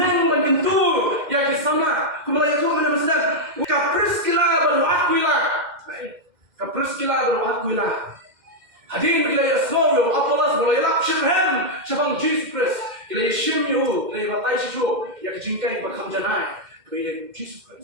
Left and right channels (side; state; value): left; late; 2.1 ms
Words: ban kentu ya ke sama. Kumulai itu mana maksudnya? KHRIST baru akuila. KHRIST baru akuila. Hadirin kita ya semua apalas mulai lap syirhem syabang Jesus Christ. Kita ya syimyu, kita ya batai syiju ya ke jingkai bakam janai. Kita ya Jesus